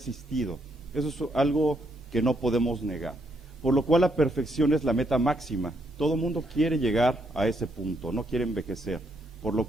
Eso es algo que no podemos negar. Por lo cual la perfección es la meta máxima. Todo mundo quiere llegar a ese punto, no quiere envejecer. Por lo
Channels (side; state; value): both; normal; correlation 0.75